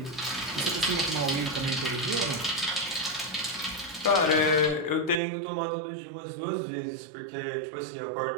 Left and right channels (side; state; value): left; drops out; at 5.2 s